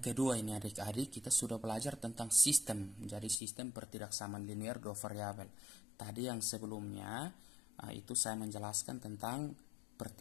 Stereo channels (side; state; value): right; drops out; at 3.4 s